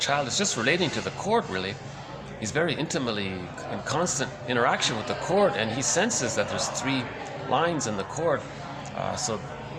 is just relating to the cord, really. He's very intimately in constant interaction with the cord, and he senses that there's 3 lines in the cord.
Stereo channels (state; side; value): identical; both; correlation 1.00